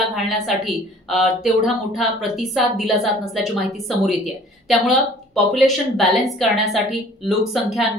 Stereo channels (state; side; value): normal; both; correlation 0.51